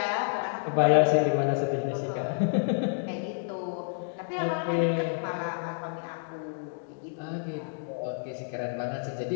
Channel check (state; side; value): silent; right; digital silence